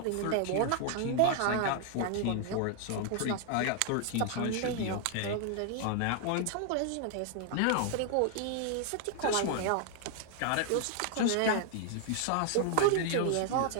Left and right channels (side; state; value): both; different; correlation 0.00